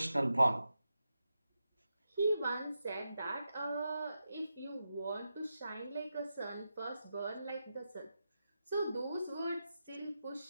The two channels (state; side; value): inverted; both; correlation -0.89